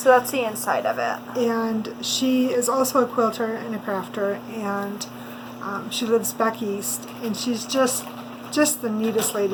that's the inside of it. And she is also a quilter and a crafter, and she lives back east. And she's just the neatest lady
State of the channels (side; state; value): both; identical; correlation 1.00